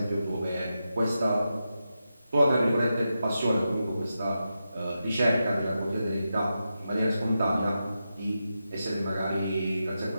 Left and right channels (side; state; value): both; inverted; correlation -0.89